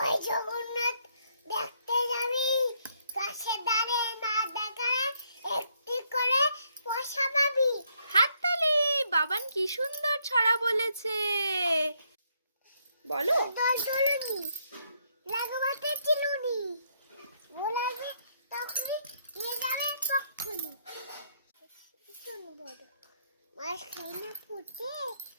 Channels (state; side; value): inverted; both; correlation -0.73